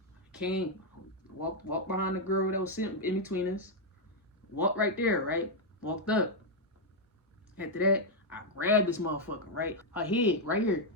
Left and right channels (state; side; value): normal; both; correlation -0.01